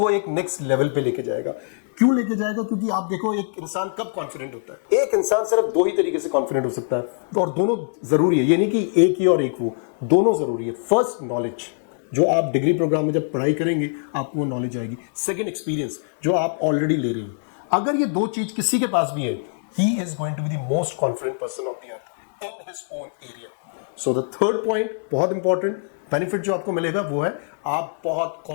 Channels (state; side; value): silent; right; digital silence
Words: एक नेक्स्ट लेवल पे लेके जाएगा। क्यों लेके जाएगा? क्योंकि आप देखो, एक इंसान कब कॉन्फिडेंट होता है? एक इंसान सिर्फ 2 ही तरीके से कॉन्फिडेंट हो सकता है, और दोनों जरूरी है। ये नहीं कि एक ही और एक वो, दोनों जरूरी है। फर्स्ट, नॉलेज, जो आप डिग्री प्रोग्राम में जब पढ़ाई करेंगे आपको वो नॉलेज आएगी। सेकेंड, एक्सपीरियंस, जो आप ऑलरेडी ले रहे हैं। अगर ये 2 चीज किसी के पास भी है, he is going to be the most confident person of the earth in his own area. So the third point, बहुत इंपॉर्टेंट बेनिफिट जो आपको मिलेगा वो है आप बहुत